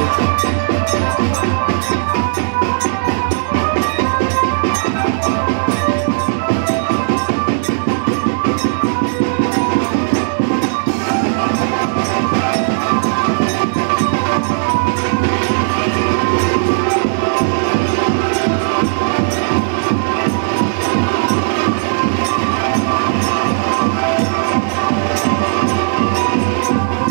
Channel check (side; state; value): left; silent; digital silence